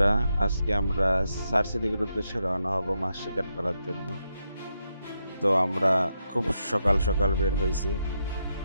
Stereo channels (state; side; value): inverted; both; correlation -0.83